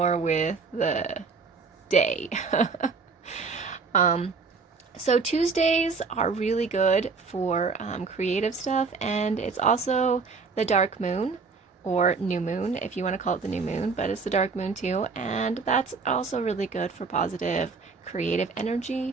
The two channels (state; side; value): quieter; left; 4.7 dB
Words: with the day. So Tuesdays are really good for creative stuff, and it's also the dark moon. or new moon, if you want to call it the new moon, but it's the dark moon too. And that's also really good for positive creative